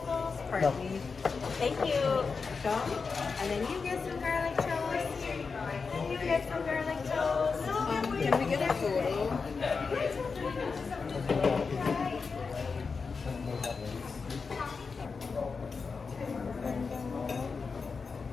partly. Thank you. And then you get some garlic toast. You get some garlic toast. Can we get a photo?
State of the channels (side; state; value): right; quieter; 4.9 dB